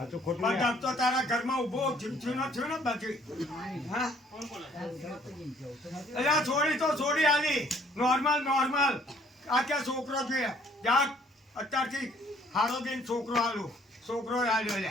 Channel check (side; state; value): both; normal; correlation 0.60